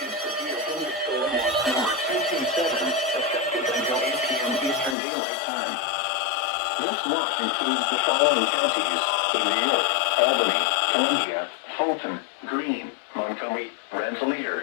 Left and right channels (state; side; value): drops out; right; at 5.0 s